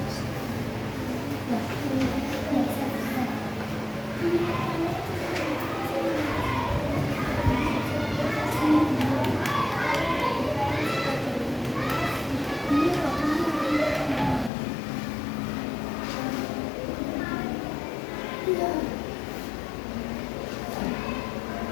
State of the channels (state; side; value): drops out; right; at 14.5 s